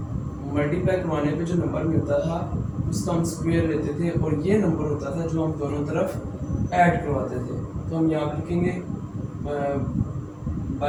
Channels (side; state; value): both; identical; correlation 1.00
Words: मल्टीप्लाई करवाने पे जो नंबर मिलता था उसका हम स्क्वायर लेते थे, और ये नंबर होता था जो हम दोनों तरफ ऐड करवाते थे। तो हम यहाँ लिखेंगे